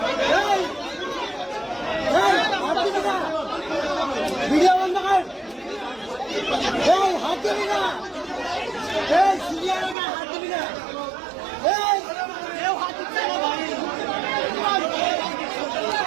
ভিডিও বন্ধ কর, হাত দিবি না, হাত দিবি না, হাত দিচ্ছে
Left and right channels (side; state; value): left; drops out; at 10.0 s